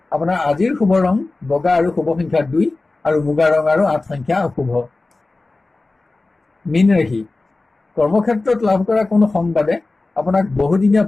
আপোনাৰ আজিৰ শুভ ৰং বগা আৰু শুভ সংখ্যা 2 আৰু মুগা ৰং আৰু 8 সংখ্যা অশুভ। মীন ৰাশি, কৰ্মক্ষেত্ৰত লাভ কৰা কোনো সংবাদে আপোনাক বহুদিনীয়া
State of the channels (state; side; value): quieter; right; 3.3 dB